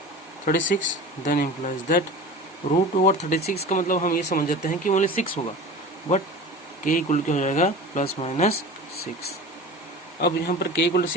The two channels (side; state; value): both; normal; correlation 0.35